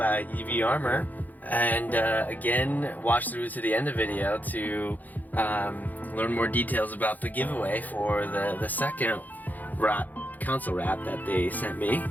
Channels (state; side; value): late; right; 0.082 ms